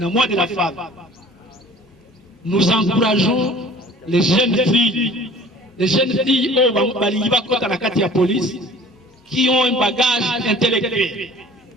mois de la femme, nous encourageons les jeunes filles au police qui ont un bagage intellectuel.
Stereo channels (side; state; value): both; normal; correlation 0.47